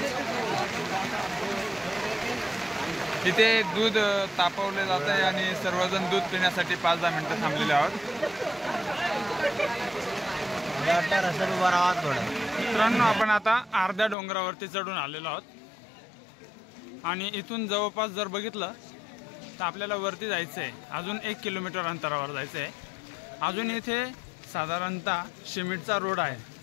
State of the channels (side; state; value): right; drops out; at 14.2 s